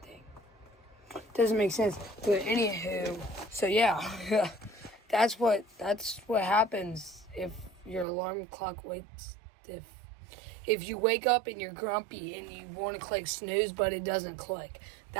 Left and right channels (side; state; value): left; drops out; at 8.1 s